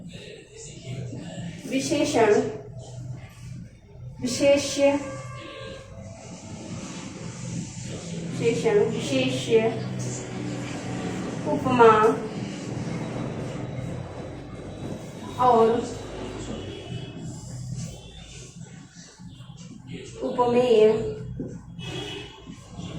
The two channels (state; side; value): identical; both; correlation 1.00